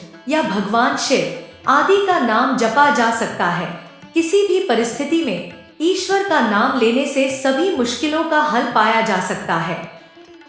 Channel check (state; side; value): identical; both; correlation 1.00